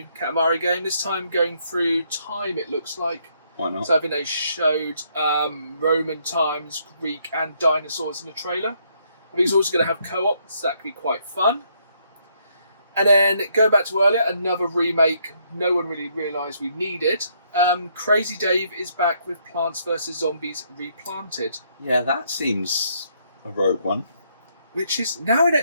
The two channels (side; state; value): both; inverted; correlation -0.71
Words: Katamari game. This time going through time, it looks like. Why not? So I think they showed Roman times, Greek and dinosaurs in the trailer. I think it's also going to have co-op, so that could be quite fun. And then going back to earlier, another remake no one really realised we needed. Crazy Dave is back with Plants vs. Zombies Replanted. Yeah, that seems a rogue one. Which is now